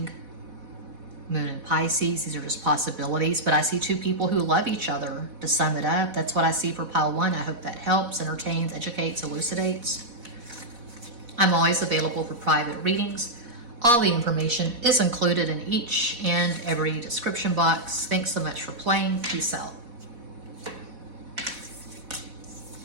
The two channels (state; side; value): late; left; 4.1 ms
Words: Moon in Pisces. These are just possibilities, but I see two people who love each other. To sum it up, that's what I see for pile one. I hope that helps, entertains, educates, elucidates. I'm always available for private readings. All the information is included in each and every description box. Thanks so much for playing. Peace out.